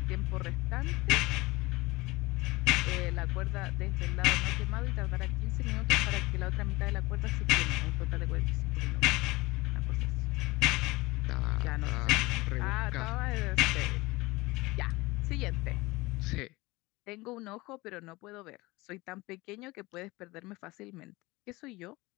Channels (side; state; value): right; quieter; 21.7 dB